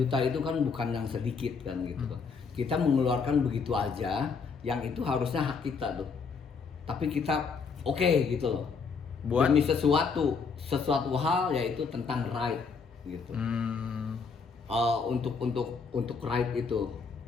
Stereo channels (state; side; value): quieter; right; 5.2 dB